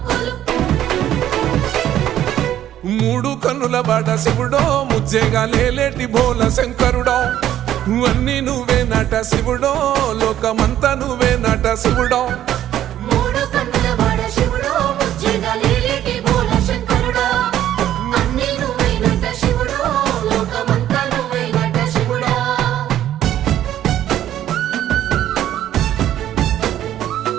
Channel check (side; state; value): left; quieter; 11.9 dB